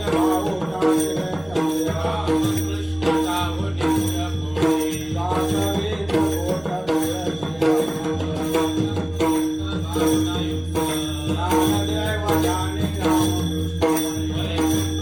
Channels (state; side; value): noise; right; rumble, 23 dB below the sound